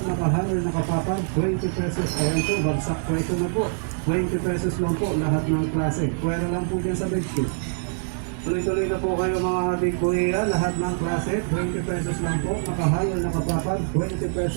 nakahanger, nakapapad, 20 pesos, ayan po, bagsak presyo na po, 20 pesos lang po, lahat ng klase, pwera lang po dyan sa bedsheet. Tuloy-tuloy na po kayo mga ating kuya, lahat ng klase, 20 pesos lang po, nakahanger, nakapapad, 20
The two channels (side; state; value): left; silent; 62 dB below the other